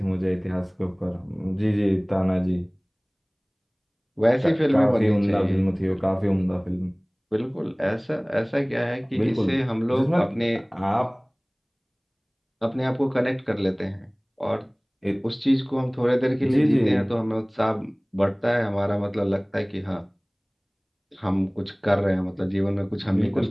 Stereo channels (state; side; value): identical; both; correlation 1.00